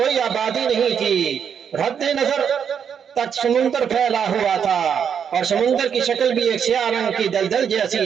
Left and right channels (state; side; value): quieter; left; 7.6 dB